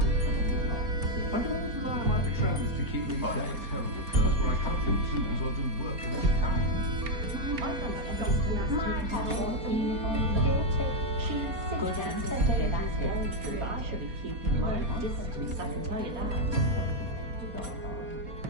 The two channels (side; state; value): left; late; 4.3 ms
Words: I can always rely on my patrons to keep me I have a safe. terrible curse where I can't do tools or do work of any kind. Good ancestor, that's very true. I should be keeping my distance, I can tell you that.